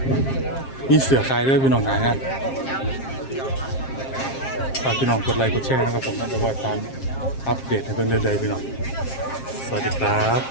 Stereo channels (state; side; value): late; right; 7.5 ms